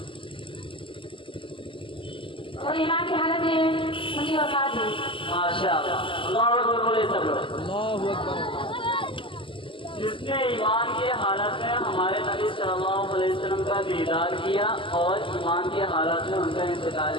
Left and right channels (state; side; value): late; right; 0.25 ms